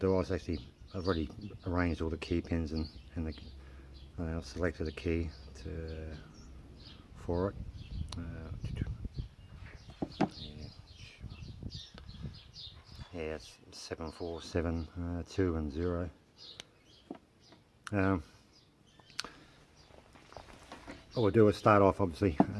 is I've already arranged all the key pins and I've selected a key for it. It's 7472 and 0. What we'll do is start off, obviously,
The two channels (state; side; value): identical; both; correlation 1.00